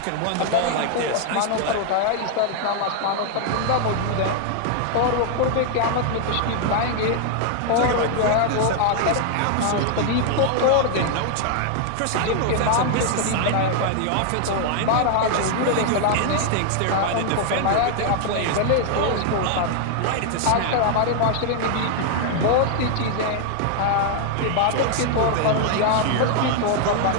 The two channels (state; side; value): different; both; correlation 0.00